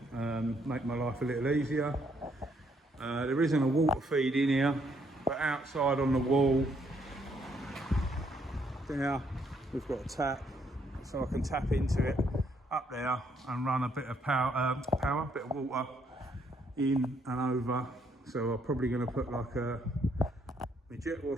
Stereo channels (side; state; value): both; normal; correlation 0.71